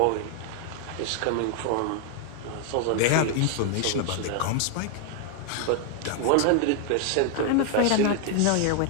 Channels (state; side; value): different; both; correlation 0.00